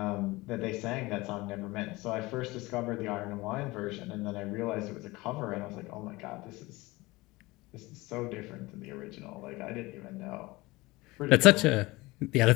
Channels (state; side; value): quieter; right; 21.5 dB